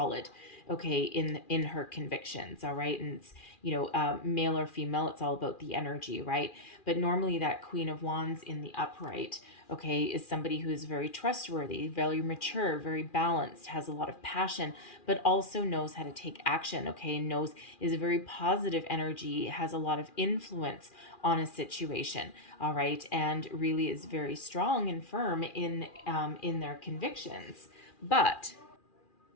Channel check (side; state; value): right; late; 2.4 ms